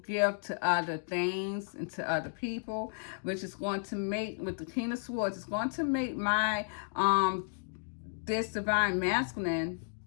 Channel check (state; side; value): silent; right; digital silence